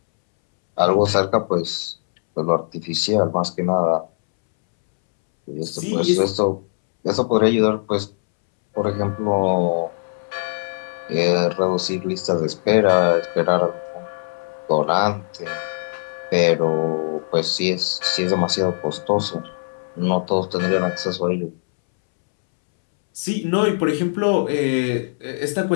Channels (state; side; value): silent; right; 65 dB below the other